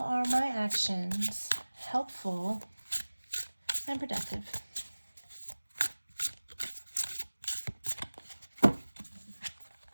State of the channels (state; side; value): inverted; both; correlation -1.00